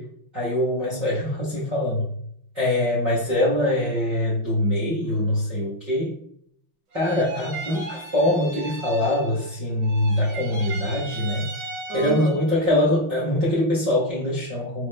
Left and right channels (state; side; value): late; left; 5.8 ms